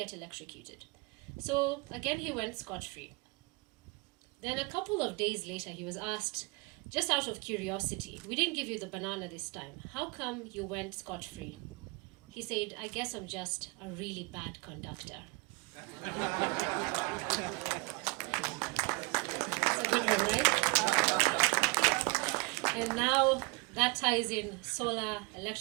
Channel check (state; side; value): quieter; left; 27.7 dB